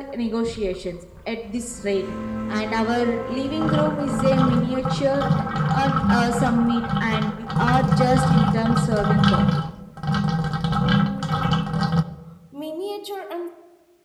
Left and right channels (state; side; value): identical; both; correlation 1.00